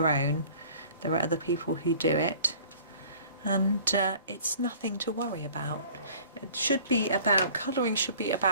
own. There are other people who do it. and it's nothing to worry about. It should be about, colouring should be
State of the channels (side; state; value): both; inverted; correlation -0.48